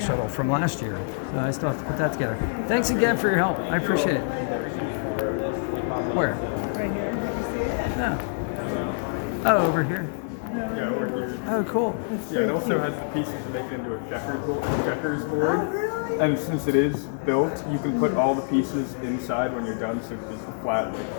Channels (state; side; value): silent; right; 60 dB below the other